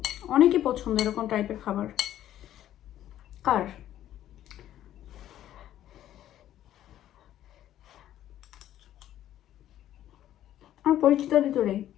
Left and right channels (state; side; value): quieter; right; 12.2 dB